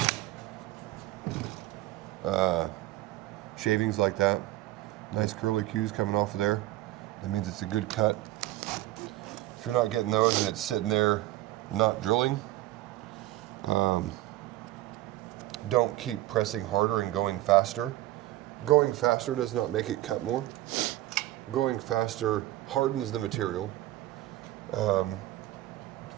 shavings like that. Nice curly cues coming off of there. That means it's a good cut. If you're not getting those and it's sitting there not drilling, don't keep pressing harder and going faster. Going faster does not make it cut more. Going faster hardens the material,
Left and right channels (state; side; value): quieter; left; 16.0 dB